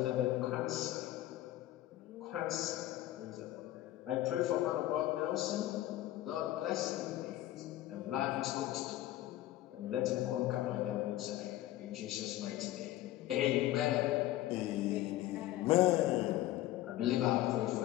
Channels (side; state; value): right; quieter; 15.1 dB